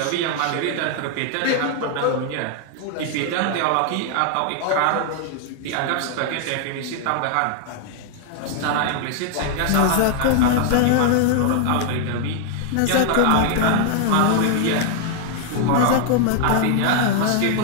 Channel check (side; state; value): both; different; correlation 0.00